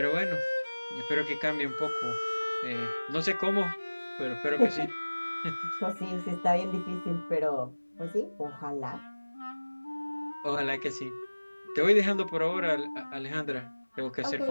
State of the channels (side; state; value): both; inverted; correlation -1.00